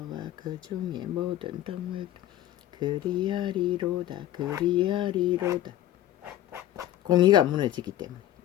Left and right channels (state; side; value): quieter; right; 13.1 dB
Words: 그 중에 모든 동물들 그리하리로다. 공의가 무너지기 때문에,